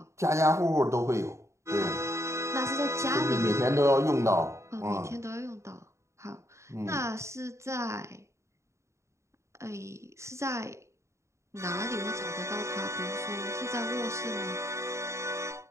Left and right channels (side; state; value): left; late; 0.14 ms